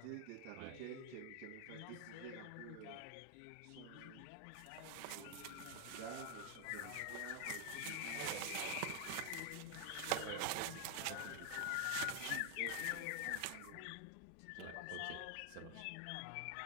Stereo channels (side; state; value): both; different; correlation 0.00